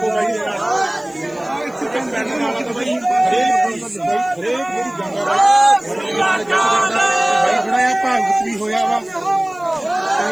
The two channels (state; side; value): noise; left; hiss, 29 dB below the sound